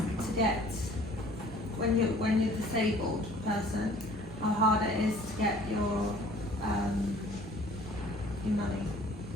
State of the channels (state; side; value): normal; both; correlation 0.52